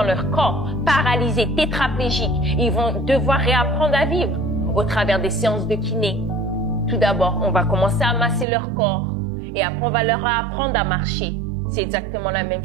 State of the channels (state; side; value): drops out; left; at 8.5 s